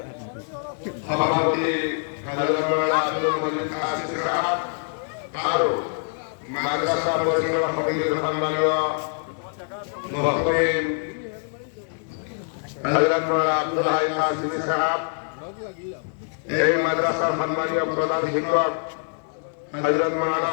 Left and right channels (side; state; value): right; silent; digital silence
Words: সভাপতি হযরত মাওলানা আব্দুল মজিদ কাসিম সাহেব আরো মাদ্রাসা পরিচালনা সমিতির সম্মানীয় মুহতামিম হযরত মাওলানা আব্দুল হাই কাসিম সাহেব, এই মাদ্রাসার সম্মানীয় প্রধান শিক্ষক হযরত মাওলানা